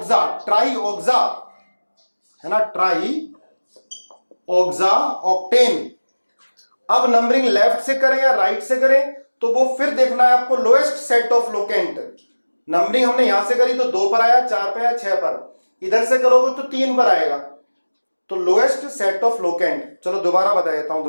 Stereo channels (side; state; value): both; inverted; correlation -1.00